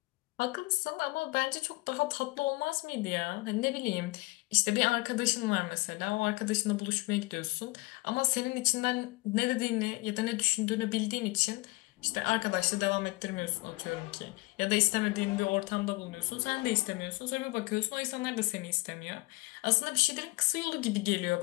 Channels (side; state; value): right; quieter; 23.8 dB